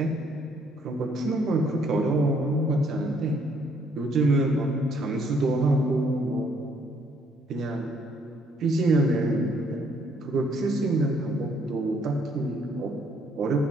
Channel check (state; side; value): normal; both; correlation 0.67